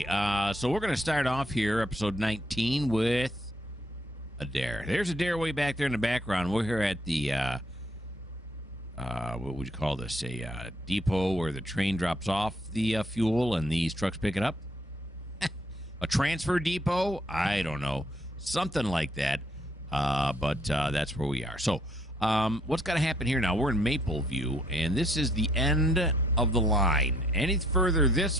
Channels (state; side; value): normal; both; correlation 0.68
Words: so we're going to start off here, episode 19, with Adair. There's Adair way back there in the background. We're here at the, what would you call this? A depot where the train drops off the fuel and these trucks pick it up. A transfer depot? I don't know. Something like that. But that's where we are. So, what's got to happen here now? We're in Mapleview, and this is the end of the line. Any further